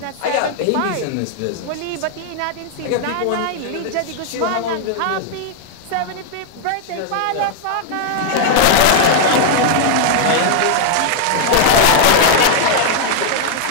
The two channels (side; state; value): both; different; correlation 0.00